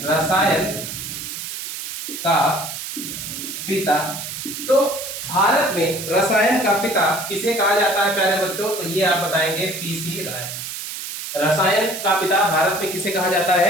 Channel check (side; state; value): right; noise; hiss, 7 dB below the sound